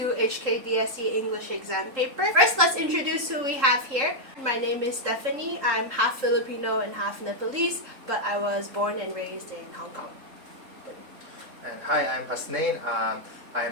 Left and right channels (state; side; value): late; left; 3.7 ms